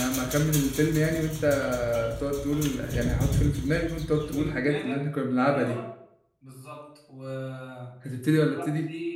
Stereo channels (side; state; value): both; identical; correlation 1.00